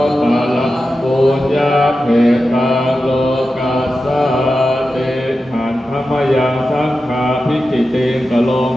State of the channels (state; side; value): normal; both; correlation 0.91